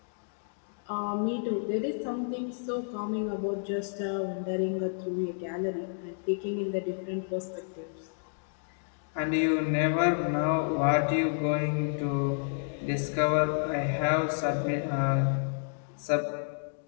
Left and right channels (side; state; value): right; silent; digital silence